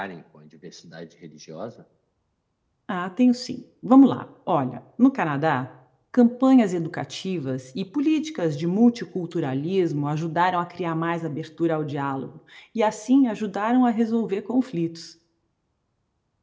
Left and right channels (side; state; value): both; identical; correlation 1.00